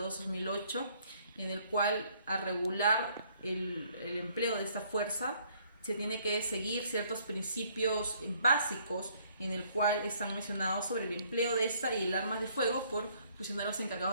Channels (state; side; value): inverted; both; correlation -0.64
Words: en el cual a regular el empleo de esta fuerza se tiene que seguir ciertos principios básicos en el cual están mencionados sobre el empleo de esta y el armas de fuego por funcionarios